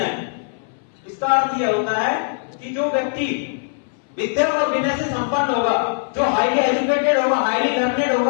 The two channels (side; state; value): right; silent; 62 dB below the other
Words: इसका अर्थ यह होता है कि जो व्यक्ति विद्या और विनय से संपन्न होगा, जो हाईली एजुकेटेड होगा, हाईली लर्नेड